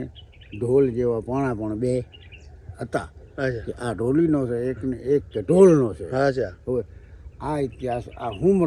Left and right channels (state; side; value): identical; both; correlation 1.00